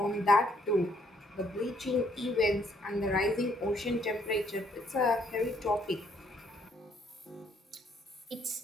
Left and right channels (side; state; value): both; normal; correlation 0.68